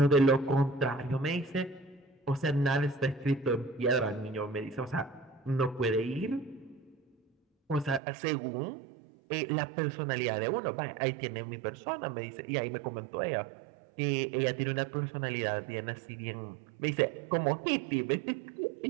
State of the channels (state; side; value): drops out; left; at 8.0 s